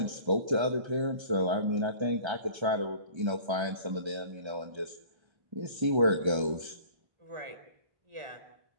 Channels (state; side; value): late; left; 1.3 ms